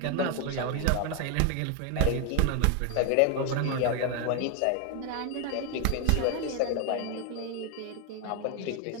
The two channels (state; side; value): different; both; correlation 0.01